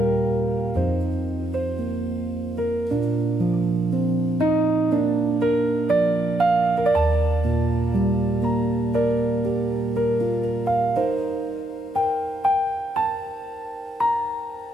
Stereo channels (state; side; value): normal; both; correlation 0.77